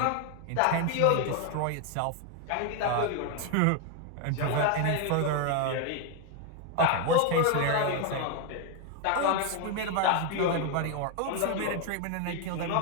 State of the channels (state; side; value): different; both; correlation 0.01